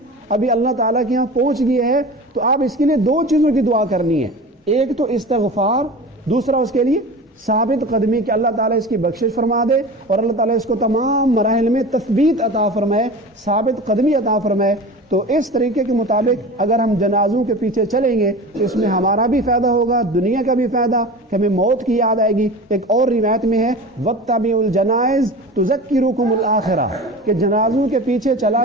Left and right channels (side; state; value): both; normal; correlation 0.33